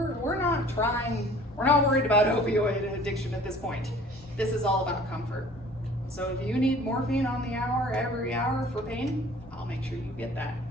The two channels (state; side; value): normal; both; correlation 0.49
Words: not worried about opioid addiction at this point. This is all about comfort. So if you need morphine on the hour, every hour for pain, I'll make sure you get that.